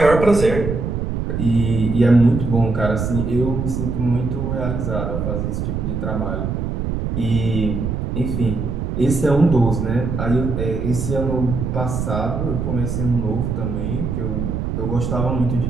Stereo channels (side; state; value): right; noise; rumble, 2 dB below the sound